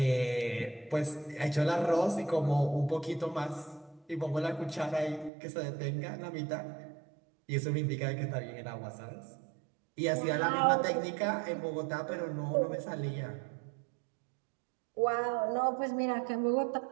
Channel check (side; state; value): left; drops out; at 5.3 s